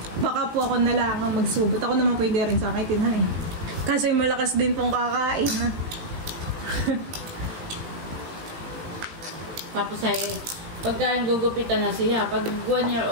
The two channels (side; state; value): left; late; 18 ms